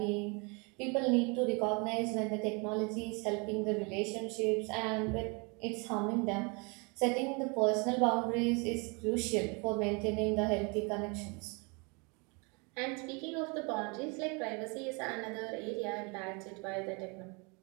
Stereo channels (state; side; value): quieter; left; 31.4 dB